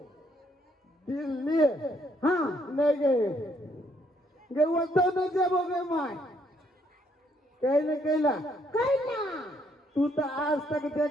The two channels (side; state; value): both; normal; correlation 0.70